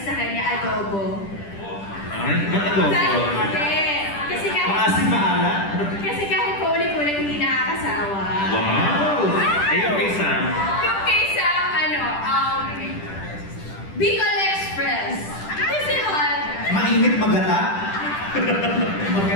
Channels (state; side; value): late; right; 10 ms